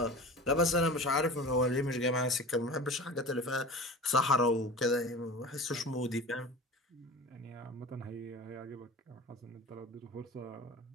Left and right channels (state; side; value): normal; both; correlation 0.35